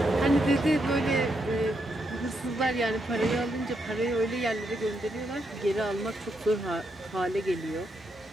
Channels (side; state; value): both; normal; correlation 0.80